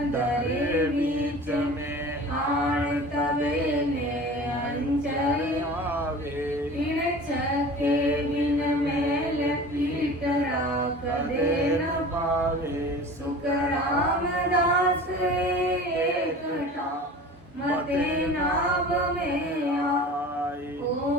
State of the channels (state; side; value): normal; both; correlation 0.39